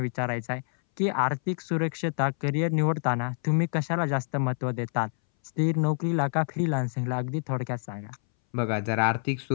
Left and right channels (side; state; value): right; silent; 60 dB below the other